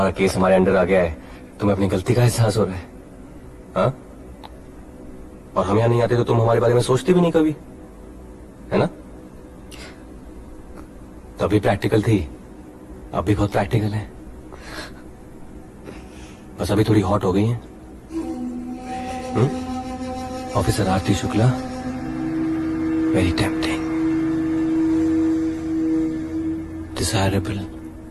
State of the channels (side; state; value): both; identical; correlation 1.00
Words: केस हमारे अंडर आ गया है तुम्हें अपनी गलती का एहसास हो रहा है। हाँ? और हम यहाँ नहीं आते तो तुम हमारे बारे में सोचती भी नहीं कभी, है ना? तभी प्रैक्टिकल थी, अब भी बहुत प्रैक्टिकल है। बस अभी थोड़ी हॉट हो गई है। Officer Aarti Shukla, very tempting, desirable.